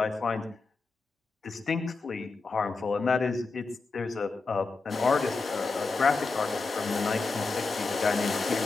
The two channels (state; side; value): quieter; right; 4.0 dB